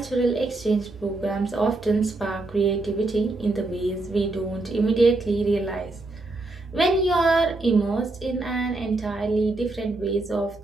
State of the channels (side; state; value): left; quieter; 3.0 dB